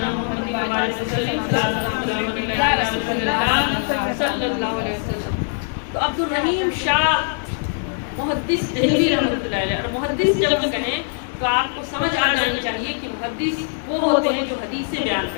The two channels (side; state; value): right; silent; 64 dB below the other